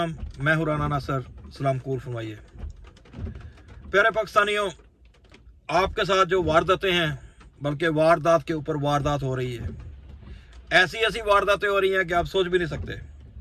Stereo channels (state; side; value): identical; both; correlation 1.00